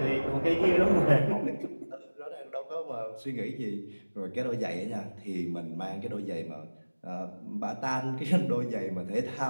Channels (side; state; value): both; inverted; correlation -1.00